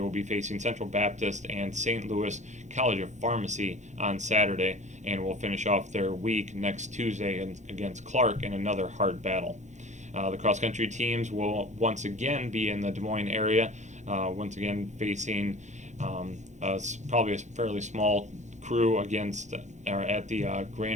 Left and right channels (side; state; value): left; late; 0.34 ms